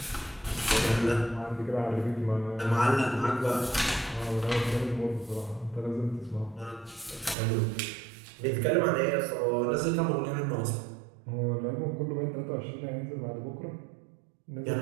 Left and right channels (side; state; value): left; drops out; at 7.4 s